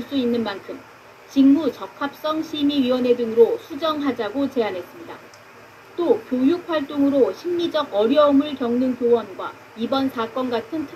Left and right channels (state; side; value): identical; both; correlation 1.00